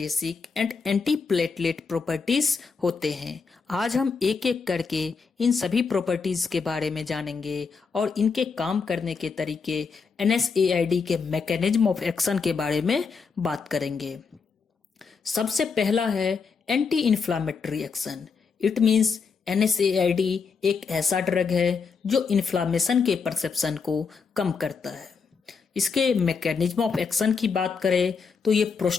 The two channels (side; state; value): right; quieter; 5.3 dB